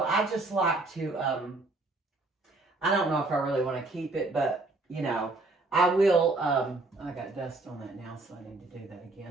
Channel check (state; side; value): quieter; left; 3.1 dB